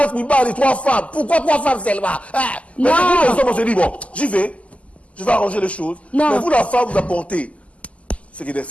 000 balles et 3 femmes. Pourquoi 3 femmes seulement? Mais nous, les hommes, on se dit, bon, j'y vais, je vais arranger les choses. Non. Mais vous, la femme, vous apportez ce qui est des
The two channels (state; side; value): late; right; 0.065 ms